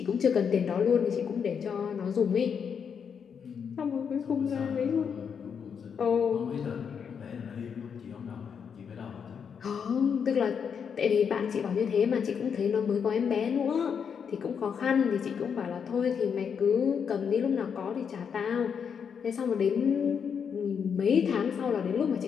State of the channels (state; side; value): quieter; right; 7.0 dB